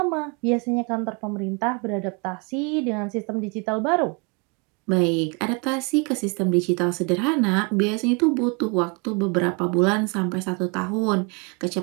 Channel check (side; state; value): left; quieter; 32.3 dB